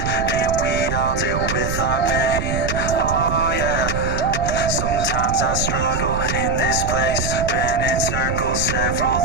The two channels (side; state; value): right; noise; rumble, 3 dB below the sound